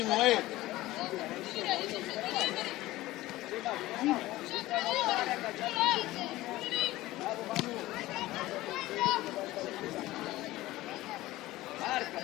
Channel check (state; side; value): quieter; right; 17.4 dB